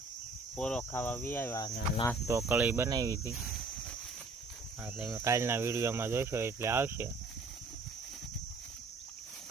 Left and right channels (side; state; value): left; quieter; 3.7 dB